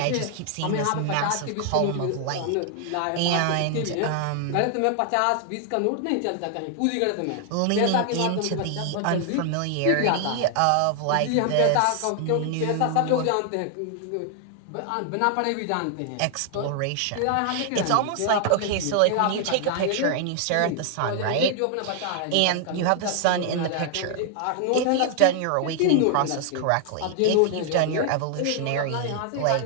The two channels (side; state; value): both; different; correlation 0.00